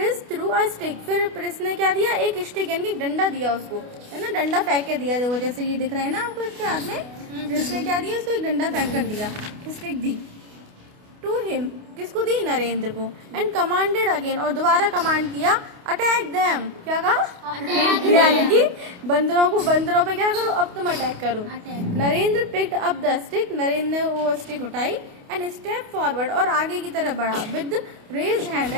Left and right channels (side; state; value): left; late; 28 ms